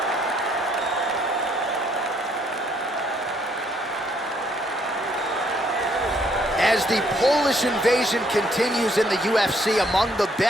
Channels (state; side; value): normal; both; correlation 0.68